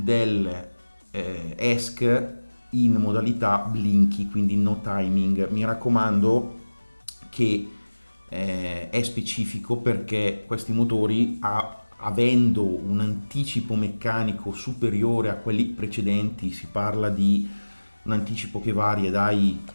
ESC in modalità blinky, quindi no timing. Mi raccomando che è specifico, perché questi motori, avendo un anticipo meccanico superiore a quelli precedenti, si parla di un anticipo che varia dai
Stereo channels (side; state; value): both; inverted; correlation -1.00